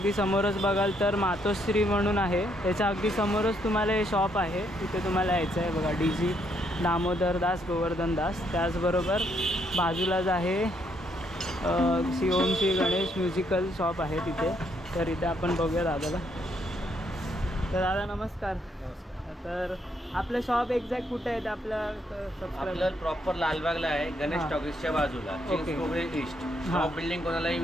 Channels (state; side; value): normal; both; correlation 0.73